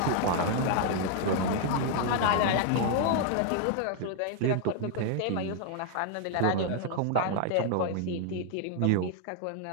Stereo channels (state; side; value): different; both; correlation 0.00